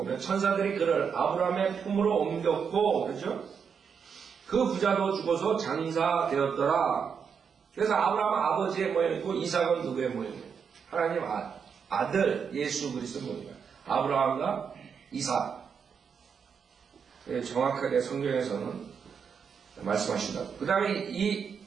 천사들이 그를 아브라함의 품으로 옮겼고, 그렇죠? 그 부자도 죽어서 장사되었더라. 그래서 아브라함은 아버지의 모양이고 이삭은 누구의 모양이에요? 하나님 아들 예수 그리스도 모양이에요. 아브라함과 이삭. 정확하게 성경에서는 말씀하신다. 그 다음에 이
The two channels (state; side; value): quieter; left; 6.6 dB